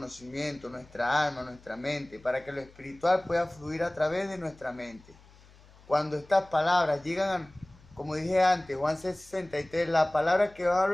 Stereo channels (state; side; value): noise; left; hum, 25 dB below the sound